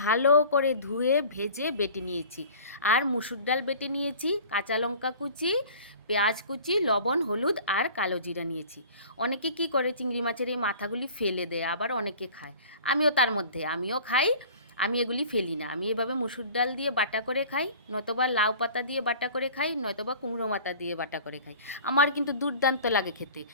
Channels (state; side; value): inverted; both; correlation -0.44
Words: ভালো করে ধুয়ে ভেজে বেটে নিয়েছি। আর মুসুর ডাল বেটে নিয়েছি, কাঁচা লঙ্কা কুচি, পেঁয়াজ কুচি, লবণ, হলুদ আর কালো জিরা নিয়েছি। অনেকে কি করে চিংড়ি মাছের এই মাথাগুলি ফেলে দেয়, আবার অনেকে খায়। আমিও তার মধ্যে, আমিও খাই। আমি এগুলি ফেলি না, আমি এভাবে মুসুর ডাল দিয়ে বাটা করে খাই, নয়তোবা লাউ পাতা দিয়ে বাটা করে খাই, নয়তোবা কুমড়ো মাথা দিয়ে বাটা করে খাই। আমার কিন্তু দুর্দান্ত লাগে খেতে।